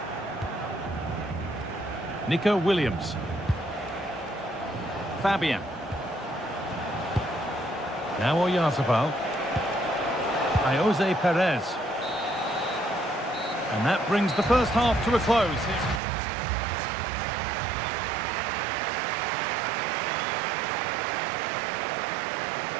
Nico Williams. Fabian. Now Oyarzabal. Jose Perez. And that brings the first half to a close.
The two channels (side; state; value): left; drops out; at 16.0 s